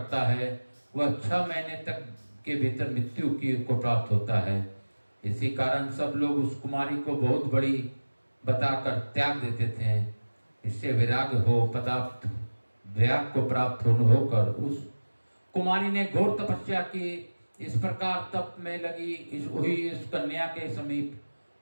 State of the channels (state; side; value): inverted; both; correlation -1.00